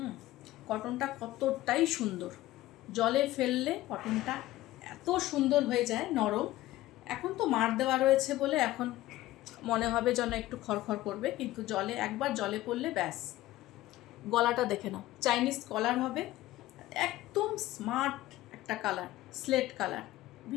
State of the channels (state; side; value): quieter; right; 16.2 dB